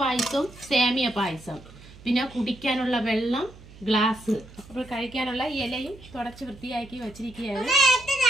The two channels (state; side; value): noise; right; hum, 20 dB below the sound